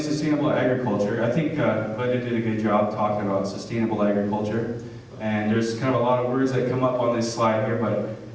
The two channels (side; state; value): both; identical; correlation 1.00